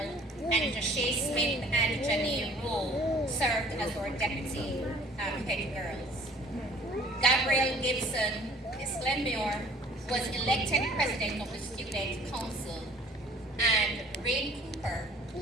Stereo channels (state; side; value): normal; both; correlation 0.53